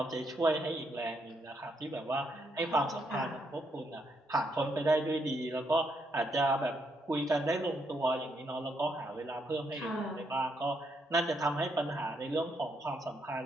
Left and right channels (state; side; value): normal; both; correlation 0.76